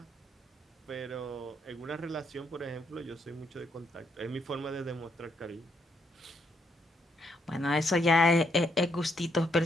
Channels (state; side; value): normal; both; correlation 0.75